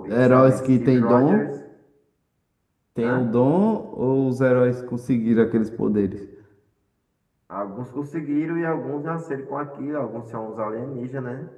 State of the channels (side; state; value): both; identical; correlation 1.00